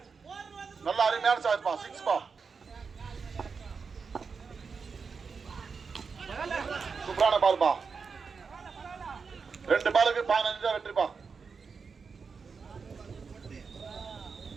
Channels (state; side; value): quieter; left; 5.3 dB